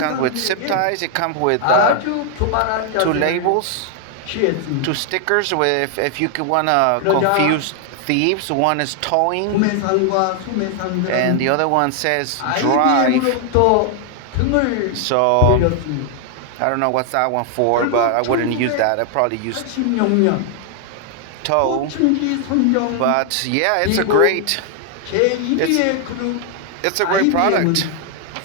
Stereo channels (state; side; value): different; both; correlation 0.00